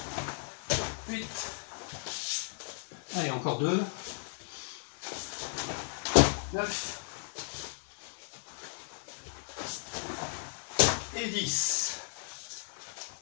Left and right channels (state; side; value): silent; right; digital silence